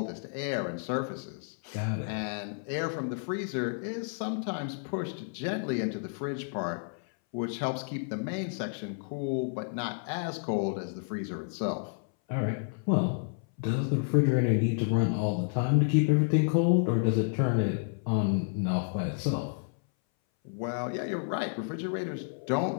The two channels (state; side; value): silent; right; 57 dB below the other